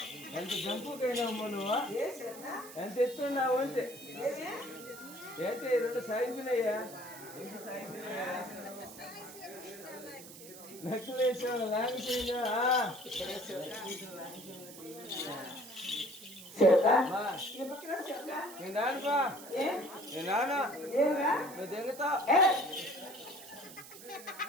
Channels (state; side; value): noise; right; hiss, 16 dB below the sound